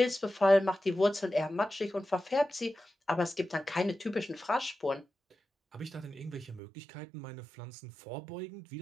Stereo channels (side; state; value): left; drops out; at 6.6 s